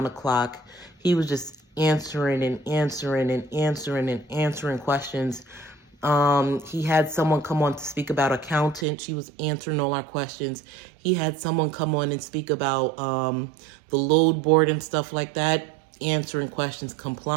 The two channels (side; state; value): left; drops out; at 8.8 s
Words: o'clock. He was just answering questions. He had someone come on to speak about accountant. She was answering all our questions. He had someone come on and speak about the load board and stuff like that, answering questions,